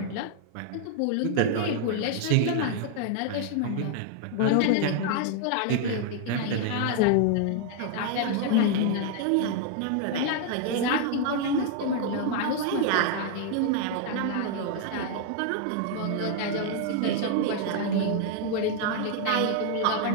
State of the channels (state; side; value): different; both; correlation 0.00